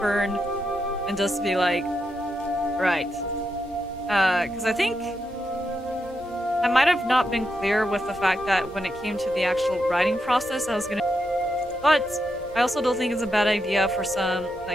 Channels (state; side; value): normal; both; correlation 0.84